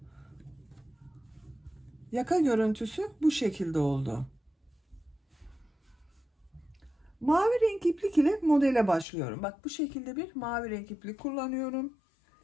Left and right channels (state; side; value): drops out; right; at 9.1 s